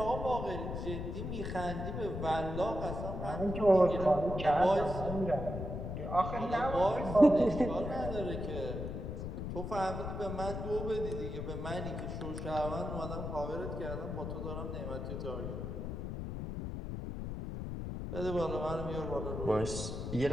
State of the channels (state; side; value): noise; left; rumble, 5 dB below the sound